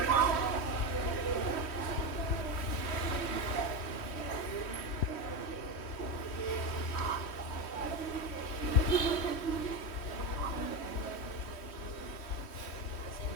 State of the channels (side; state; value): right; late; 3.1 ms